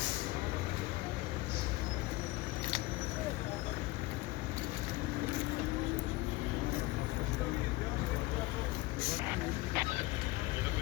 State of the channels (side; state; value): right; quieter; 19.9 dB